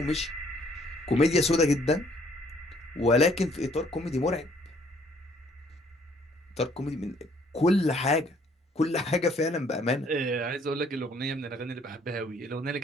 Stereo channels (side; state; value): both; normal; correlation 0.62